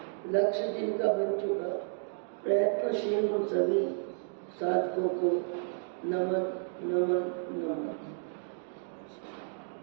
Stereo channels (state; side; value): silent; left; digital silence